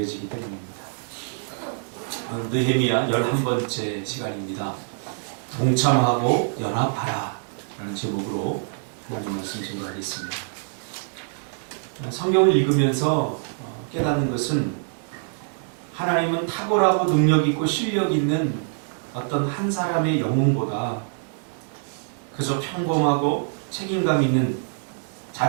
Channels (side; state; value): left; silent; digital silence